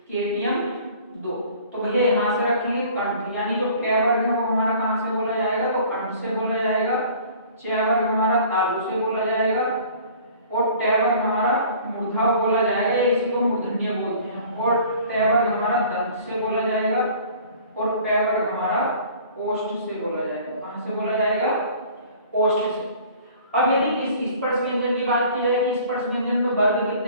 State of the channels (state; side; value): inverted; both; correlation -0.49